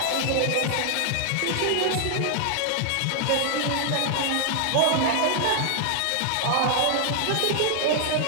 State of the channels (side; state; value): both; different; correlation 0.00